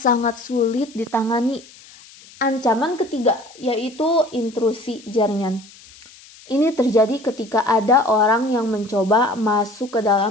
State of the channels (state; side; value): noise; left; hiss, 23 dB below the sound